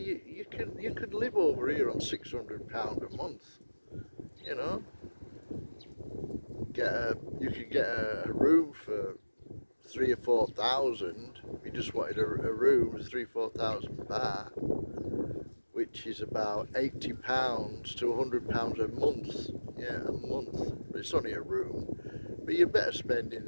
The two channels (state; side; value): inverted; both; correlation -1.00